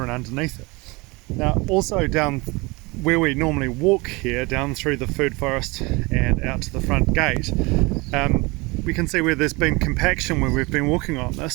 and underneath it. Now also down where we normally walk here, down through the food forest and out to the front gate, we can see where there's been compaction when we've been walking on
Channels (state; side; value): quieter; left; 25.2 dB